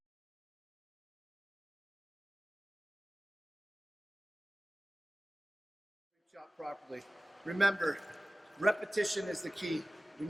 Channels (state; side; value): normal; both; correlation 0.96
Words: Shot properly. Remember, repetition is the key. You